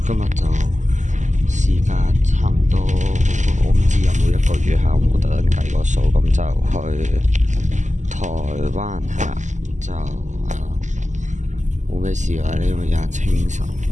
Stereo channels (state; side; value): late; left; 0.35 ms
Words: 今日就時間差唔多，我唔知有冇1個月下，我冇特登計個數，咁就去台灣係啦，就冇咩事啦。呢個而家清晨